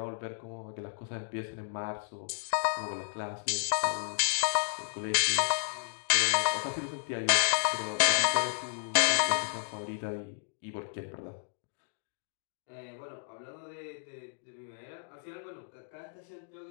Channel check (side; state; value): right; silent; digital silence